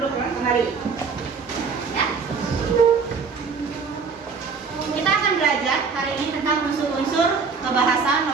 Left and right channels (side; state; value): left; quieter; 5.3 dB